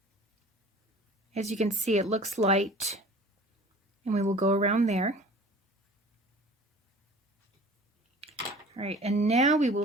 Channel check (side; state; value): both; normal; correlation 0.45